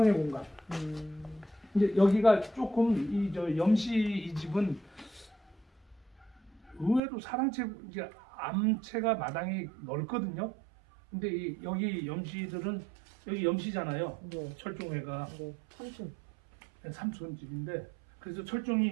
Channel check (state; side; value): drops out; left; at 7.0 s